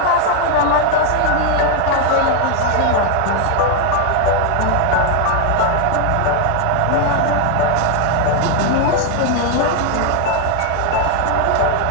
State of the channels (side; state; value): both; different; correlation 0.01